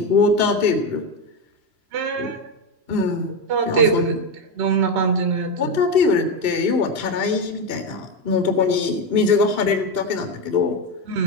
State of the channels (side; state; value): left; late; 3.0 ms